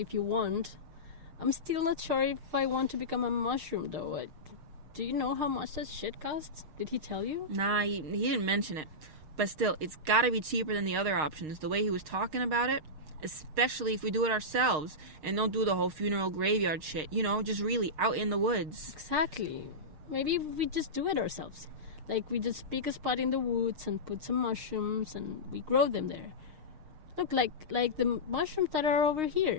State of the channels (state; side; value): late; left; 6.5 ms